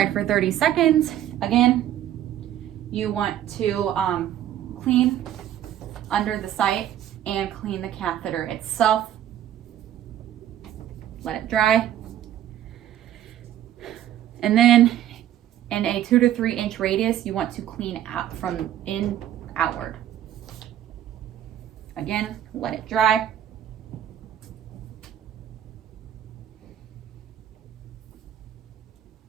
for 30 seconds, again, you want to clean under the site and clean the catheter itself. Let it dry. And then in a 2 to 3 inch radius, you want to clean out from in outward. Again, let it dry.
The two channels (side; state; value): left; quieter; 11.5 dB